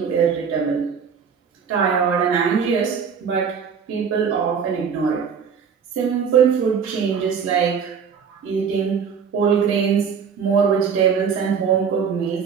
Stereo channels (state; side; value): quieter; left; 6.7 dB